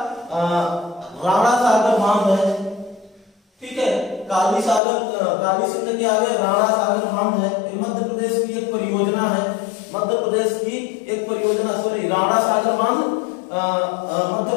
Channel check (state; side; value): drops out; right; at 4.8 s